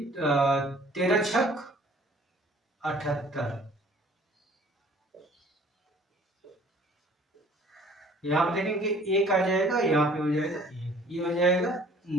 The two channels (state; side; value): normal; both; correlation 0.53